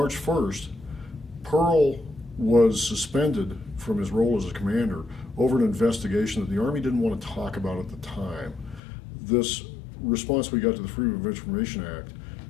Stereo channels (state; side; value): drops out; right; at 8.8 s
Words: 1st, Pearl was suspended from his role as a commander over an investigation that the Army didn't want to talk about at the time. This response we got to the Freedom of Information Act